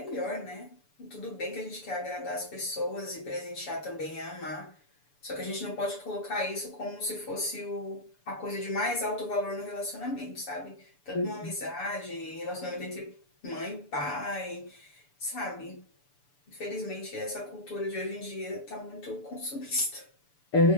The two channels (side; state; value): right; late; 6.9 ms